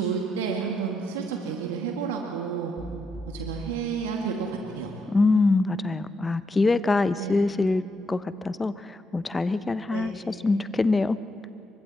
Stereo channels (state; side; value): normal; both; correlation 0.80